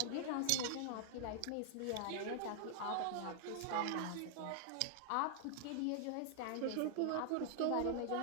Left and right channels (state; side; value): different; both; correlation -0.01